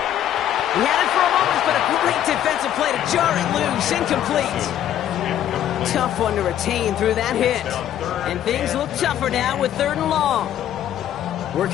He had it for a moment, but a great defensive play to jar it loose, incomplete. Tough one to retain through that hit. And things look tougher now with 3rd and long.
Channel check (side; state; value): right; quieter; 11.1 dB